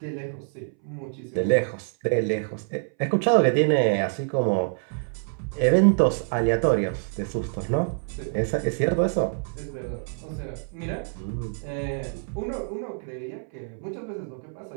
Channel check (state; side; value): silent; left; 60 dB below the other